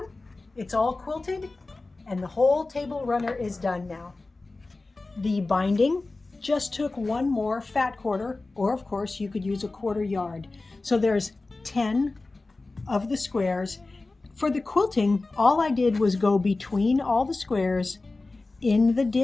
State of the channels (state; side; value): quieter; right; 3.4 dB